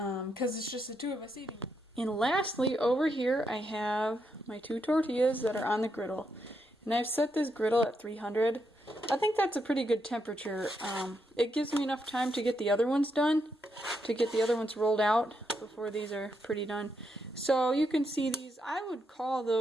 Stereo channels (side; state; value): both; normal; correlation 0.80